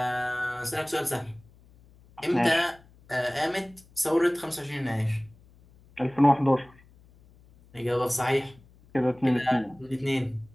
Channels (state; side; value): noise; left; hum, 27 dB below the sound